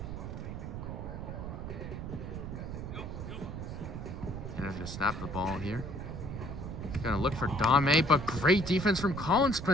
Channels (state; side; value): noise; right; rumble, 7 dB below the sound